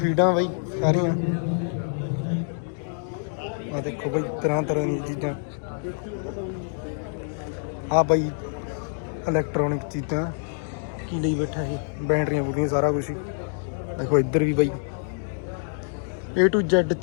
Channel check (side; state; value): right; silent; digital silence